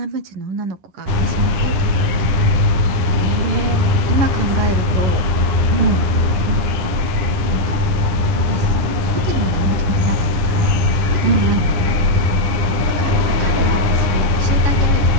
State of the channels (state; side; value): late; left; 10 ms